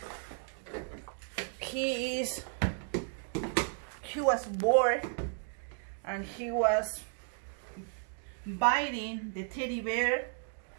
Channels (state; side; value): silent; left; 55 dB below the other